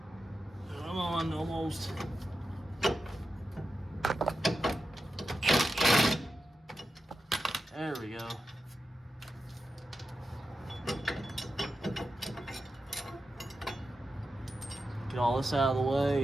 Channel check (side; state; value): both; normal; correlation 0.90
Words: Come on, almost. There we go. Get all this out of the